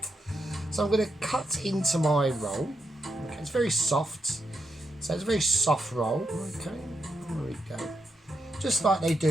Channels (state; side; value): normal; both; correlation 0.82